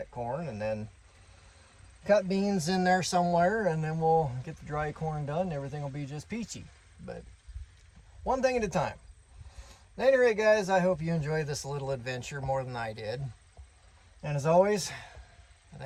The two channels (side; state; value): both; identical; correlation 1.00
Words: corn. And then cut beans in there somewhere. And then we'll get the dry corn done. And everything will be just peachy. But one thing at a time. At any rate, guys, I hope you enjoyed this little adventure more than I did. And as always, I